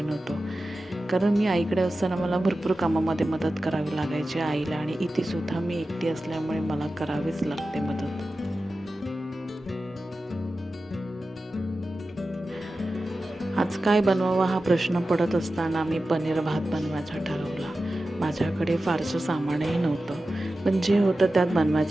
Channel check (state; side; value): normal; both; correlation 0.94